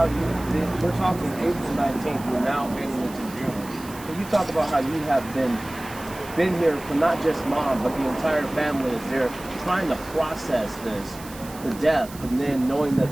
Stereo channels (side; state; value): right; noise; hiss, 17 dB below the sound